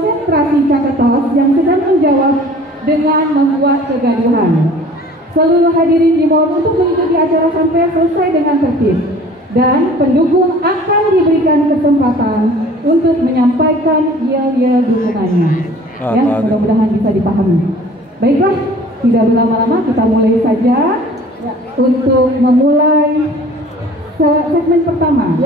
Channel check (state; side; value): normal; both; correlation 0.48